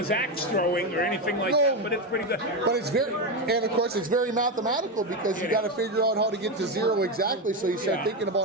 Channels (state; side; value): normal; both; correlation 0.12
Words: axe throwing or anything like that, but it's pretty good. But it's very, and of course it's very mathematical because you got to figure out how to get to zero exactly. So you start thinking